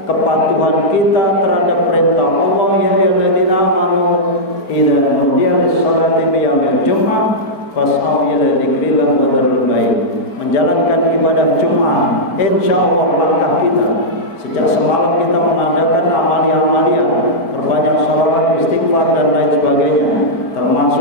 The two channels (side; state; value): right; late; 4.4 ms